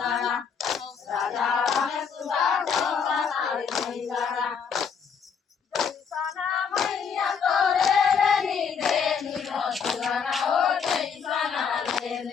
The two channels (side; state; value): right; quieter; 6.4 dB